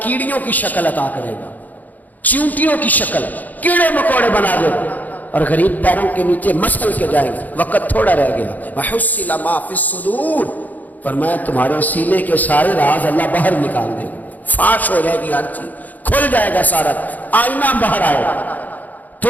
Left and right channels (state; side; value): late; right; 0.081 ms